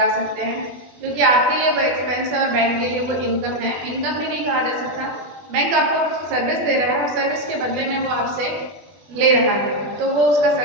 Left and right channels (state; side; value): late; left; 20 ms